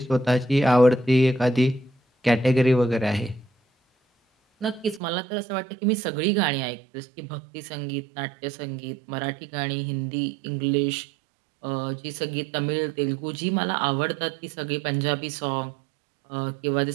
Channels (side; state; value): left; drops out; at 5.0 s